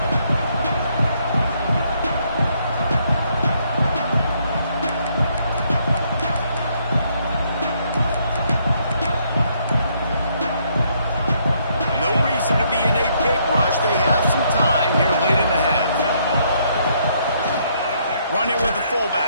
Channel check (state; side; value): inverted; both; correlation -0.71